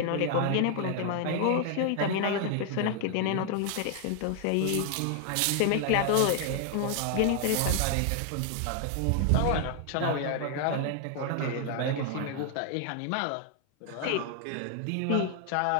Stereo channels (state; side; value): different; both; correlation 0.00